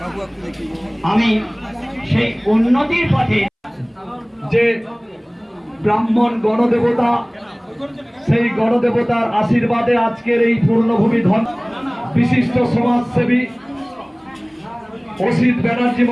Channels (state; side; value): identical; both; correlation 1.00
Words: আমি সেই উন্নতির পথে যে ব্রাহ্মণ গণদেবতা, সেই গণদেবতার আশীর্বাদে আজকের এই পূর্ণভূমি ধন বিশিষ্ট সমাজসেবী অসিত ব্যানার্জি